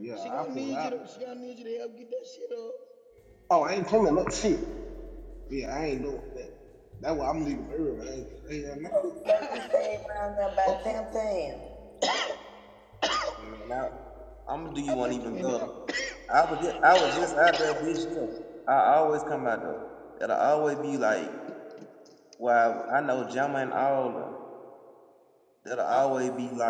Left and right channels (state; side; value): identical; both; correlation 1.00